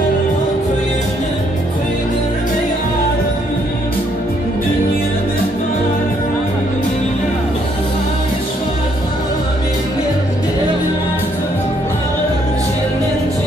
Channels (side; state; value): both; normal; correlation 0.70